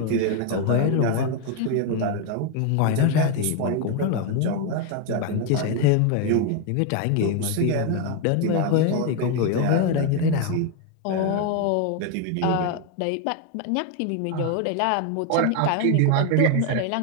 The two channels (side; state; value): both; different; correlation 0.01